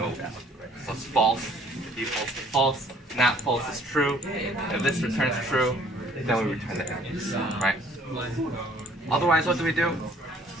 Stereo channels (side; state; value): both; normal; correlation 0.58